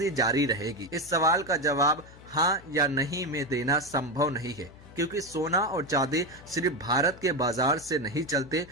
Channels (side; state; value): left; noise; hum, 21 dB below the sound